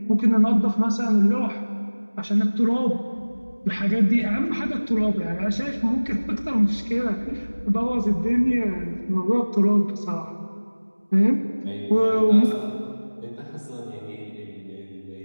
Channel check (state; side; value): inverted; both; correlation -1.00